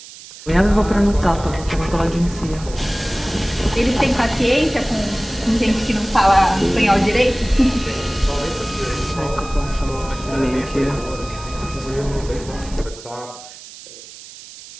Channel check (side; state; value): right; noise; hiss, 17 dB below the sound